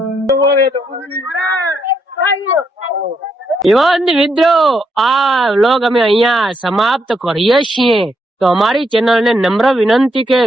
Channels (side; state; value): both; normal; correlation 0.77